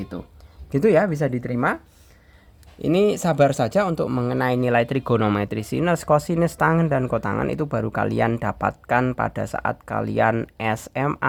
Gitu ya, bisa diterima. Ini sabar saja untuk mengenai nilai trigonometri sinus, kosinus, tangen, dan kotangan itu baru kalian dapatkan pada saat kalian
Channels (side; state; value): both; identical; correlation 1.00